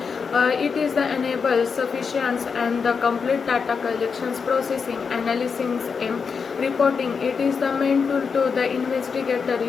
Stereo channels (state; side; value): quieter; right; 5.7 dB